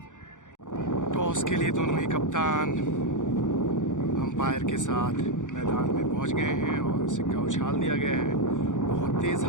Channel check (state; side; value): late; right; 0.86 ms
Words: टॉस के लिए दोनों ही कप्तान अंपायर के साथ मैदान में पहुंच गए हैं और सिक्का उछाल दिया गया है। बहुत तेज़